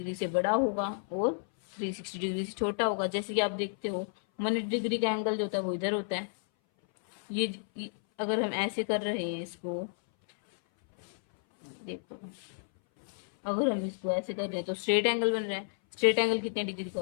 से बड़ा होगा और 360 डिग्री से छोटा होगा। जैसे कि आप देखते हो 180 डिग्री का एंगल जो होता है वो इधर होता है। ये अगर हम ऐसे कर रहे हैं इसको, देखो, अगर हम इसको ऐसे कर रहे हैं तो स्ट्रेट एंगल बन रहा है। स्ट्रेट एंगल कितने डिग्री का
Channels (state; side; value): silent; right; 57 dB below the other